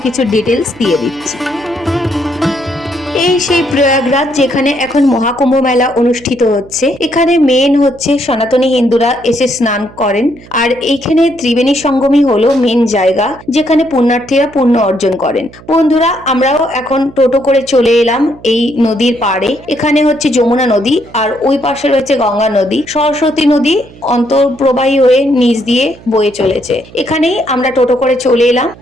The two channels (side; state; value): right; noise; hum, 21 dB below the sound